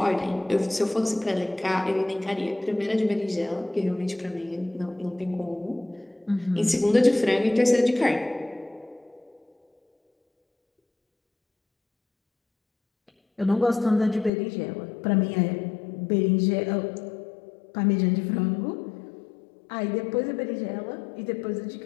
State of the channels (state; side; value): drops out; right; at 14.3 s